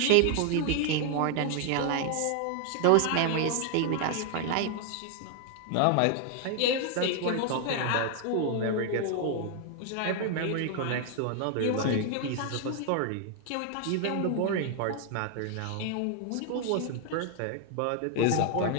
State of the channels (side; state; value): both; different; correlation 0.00